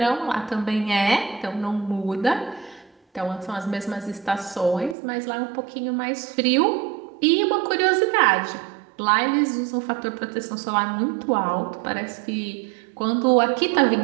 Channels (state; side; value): drops out; left; at 5.0 s